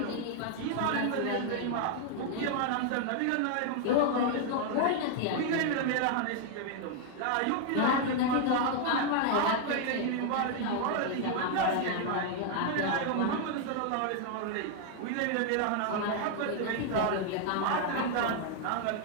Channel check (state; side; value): different; both; correlation 0.00